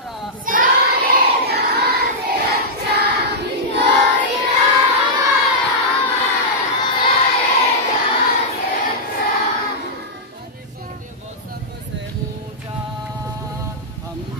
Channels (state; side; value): normal; both; correlation -0.10